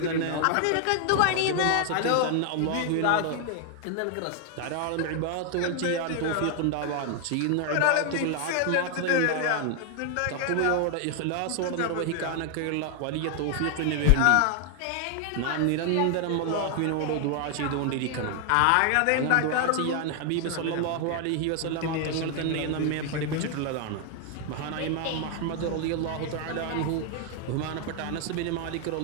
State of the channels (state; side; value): different; both; correlation 0.00